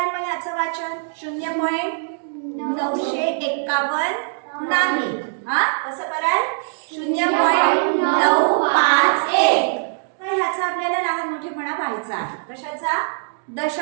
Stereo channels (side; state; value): left; silent; digital silence